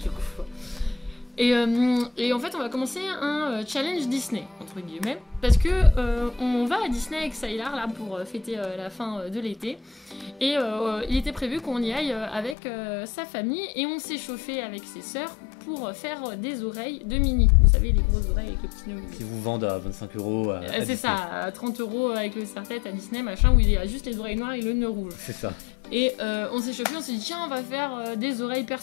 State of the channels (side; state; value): right; drops out; at 12.6 s